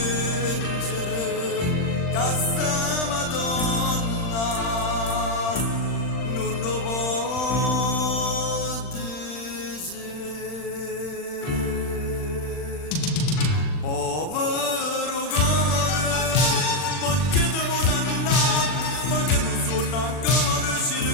che sta Madonna non lo può dire. Povero cuore, perché devo dannare, perché non sono ancora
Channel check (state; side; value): late; right; 39 ms